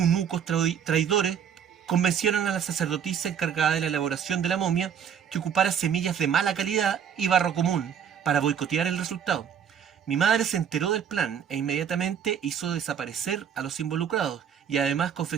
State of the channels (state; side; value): quieter; left; 8.2 dB